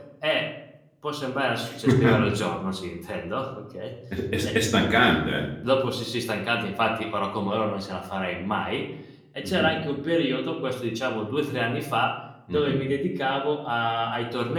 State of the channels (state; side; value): identical; both; correlation 1.00